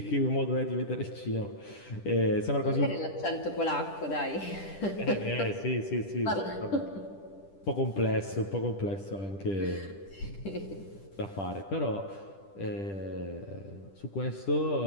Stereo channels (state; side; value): late; right; 10 ms